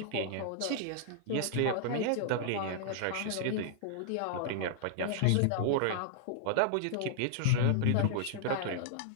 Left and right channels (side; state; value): both; different; correlation -0.01